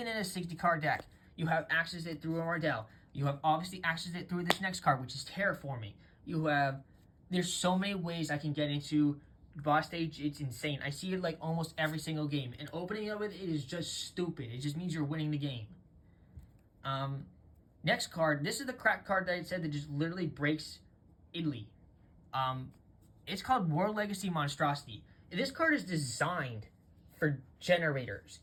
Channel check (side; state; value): both; identical; correlation 1.00